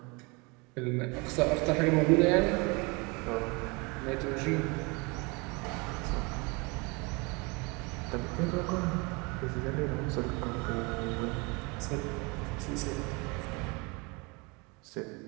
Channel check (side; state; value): left; quieter; 28.3 dB